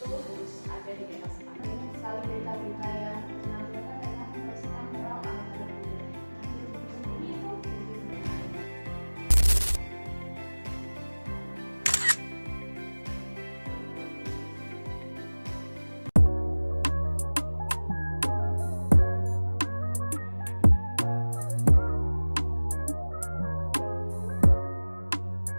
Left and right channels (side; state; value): both; inverted; correlation -1.00